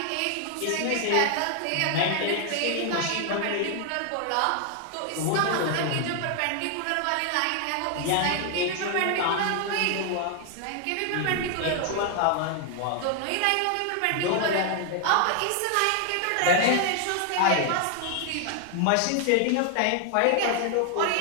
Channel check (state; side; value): different; both; correlation 0.00